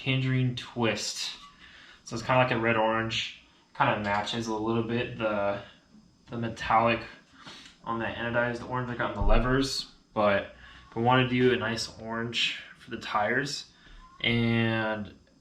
Twist. So it's kind of like a red-orange, kind of matches a little bit the metallic on the anodized orange I got on the levers, but I want to do a nice orange for the tires. And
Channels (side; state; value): both; identical; correlation 1.00